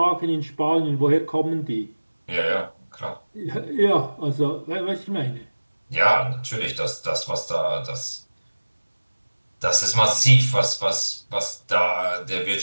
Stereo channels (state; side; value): inverted; both; correlation -1.00